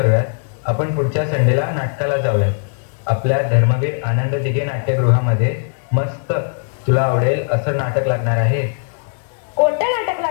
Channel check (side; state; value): right; silent; 60 dB below the other